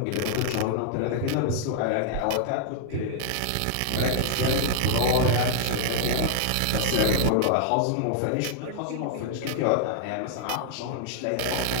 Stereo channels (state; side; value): different; both; correlation -0.01